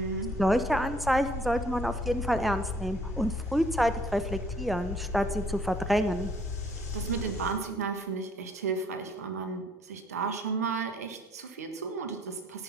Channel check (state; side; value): normal; both; correlation 0.62